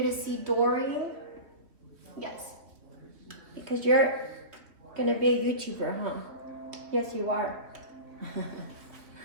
to see Dory, yes, because you're gonna be a YouTuber, huh? Yes, you are.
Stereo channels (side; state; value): left; late; 3.0 ms